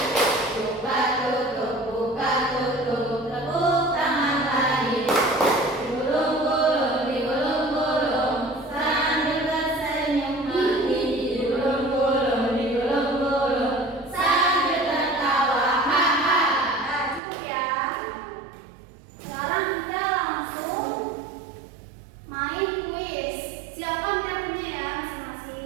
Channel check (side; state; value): left; drops out; at 17.2 s